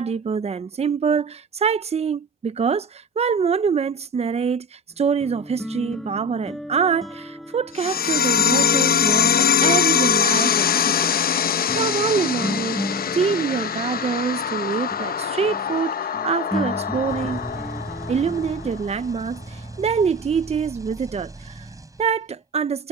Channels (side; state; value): both; normal; correlation 0.26